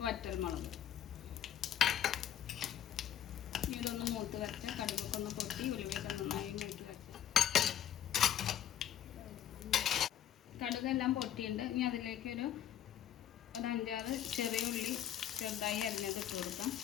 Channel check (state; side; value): quieter; right; 10.4 dB